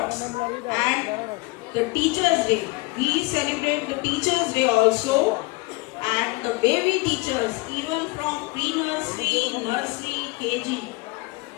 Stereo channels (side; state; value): right; quieter; 24.5 dB